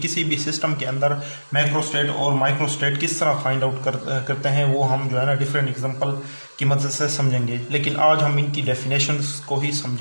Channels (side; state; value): both; inverted; correlation -1.00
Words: भी सिस्टम के अंदर मैक्रो स्टेट और माइक्रो स्टेट किस तरह फाइंड आउट करते हैं, वो हम जो है ना डिफरेंट एग्जांपल की मदद से समझेंगे। लेकिन आज हम इनकी डेफिनेशंस को ही